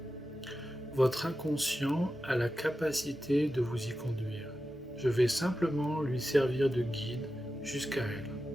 Votre inconscient a la capacité de vous y conduire. Je vais simplement lui servir de guide jusqu'à elle.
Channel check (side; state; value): both; normal; correlation 0.92